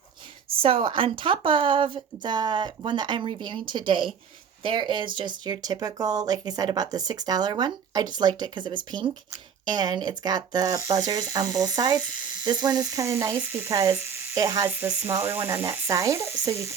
So on top of the one that I'm reviewing today, there is just your typical, like I said about the $6 one. I just liked it because it was pink and it's got the buzzers on both sides. This one is kind of nice because it has the smaller one on that side, so you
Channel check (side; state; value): left; quieter; 7.1 dB